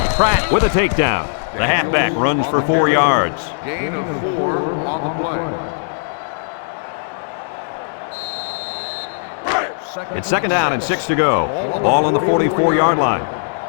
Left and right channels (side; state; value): right; silent; digital silence